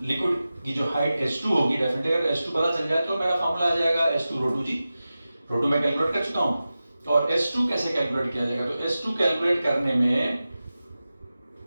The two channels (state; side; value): inverted; both; correlation -0.94